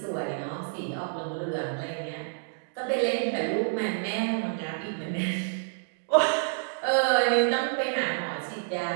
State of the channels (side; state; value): left; silent; digital silence